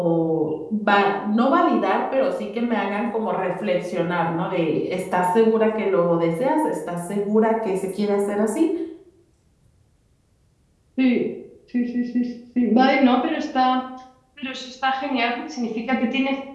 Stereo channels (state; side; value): identical; both; correlation 1.00